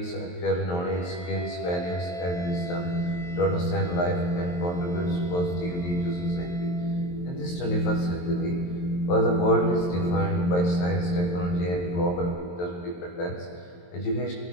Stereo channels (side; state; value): right; late; 23 ms